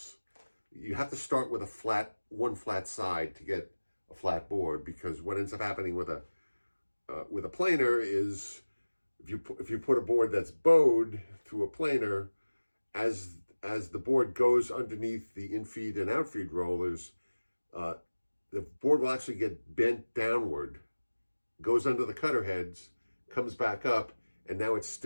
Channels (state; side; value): inverted; both; correlation -1.00